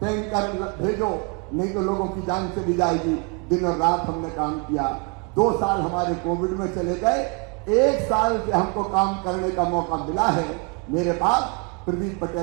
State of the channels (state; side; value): quieter; left; 30.7 dB